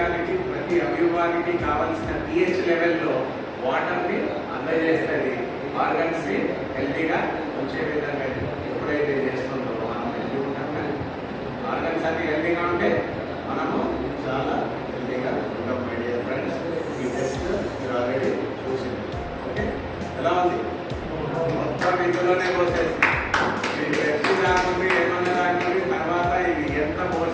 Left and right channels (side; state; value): both; identical; correlation 1.00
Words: ప్రతి అవయవానికి కావలసిన pH లెవెల్లో వాటర్ని అందజేస్తుంది. ఆర్గన్స్ ని హెల్తీగా ఉంచే విధంగా ఎప్పుడైతే చేస్తుందో మనం హెల్తీ ఉంటాం. కానీ ఆర్గన్స్ అన్ని హెల్తీగా ఉంటే మనము చాలా హెల్తీగా ఉంటాం. మై డియర్ ఫ్రెండ్స్, ఈ టెస్ట్ మీరు ఆల్రెడీ చూసింది. ఓకే, ఎలా ఉంది? మొత్తం ఇందులోనే పోసేసి మీరు ఎప్పుడు రాకుంది, ఏమన్నా రాకుంది, తర్వాత ఇది ఎంత